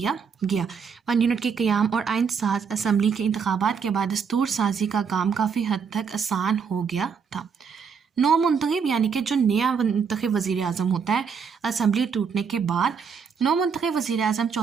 गया। 1 यूनिट के क़याम और आइन साज असम्बली के इंतखाबात के बाद दस्तूर साजी का काम काफ़ी हद तक आसान हो गया था। नौ मुंतखब यानी कि जो नया मुंतखब वज़ीर आज़म होता है असम्बली टूटने के बाद, नौ मुंतखब वज़ीर आज़म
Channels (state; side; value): quieter; left; 6.3 dB